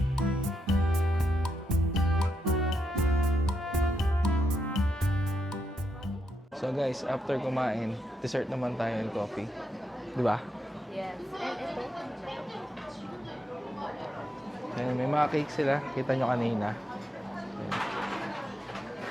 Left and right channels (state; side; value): normal; both; correlation 0.82